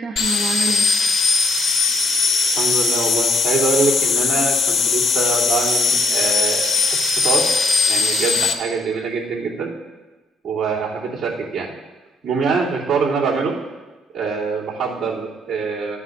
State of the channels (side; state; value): both; normal; correlation 0.69